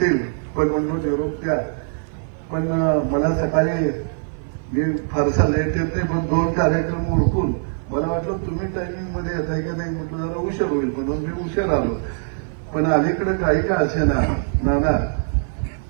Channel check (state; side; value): silent; left; 55 dB below the other